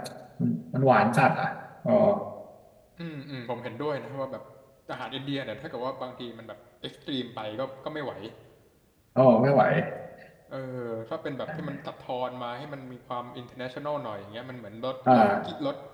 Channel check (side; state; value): both; identical; correlation 1.00